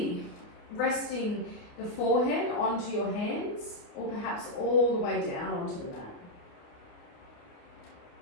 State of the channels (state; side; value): late; right; 28 ms